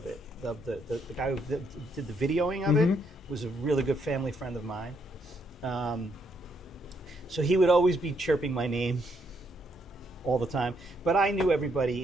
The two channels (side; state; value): both; normal; correlation 0.74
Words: it, the guy who did the videoing of it, was a really good family friend of mine. So he would always be chirping my name all the time. But I knew